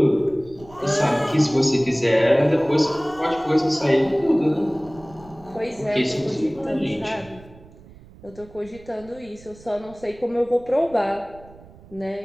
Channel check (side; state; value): right; noise; rumble, 22 dB below the sound